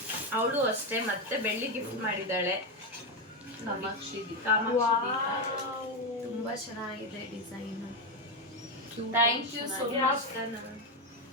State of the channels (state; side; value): normal; both; correlation 0.08